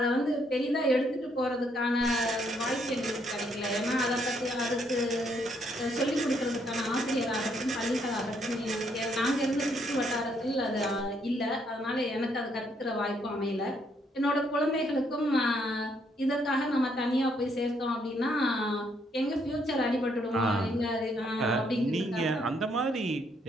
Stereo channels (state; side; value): normal; both; correlation 0.72